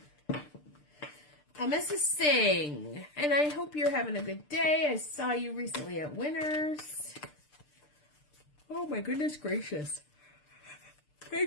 Mrs. Singh. And I hope you're having a good day. I saw you recently at Winners. Oh my goodness gracious.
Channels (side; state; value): right; late; 6.7 ms